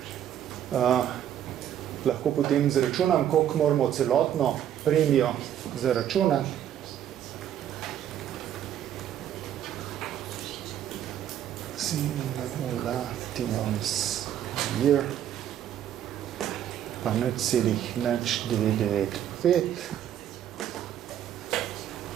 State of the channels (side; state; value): left; quieter; 10.5 dB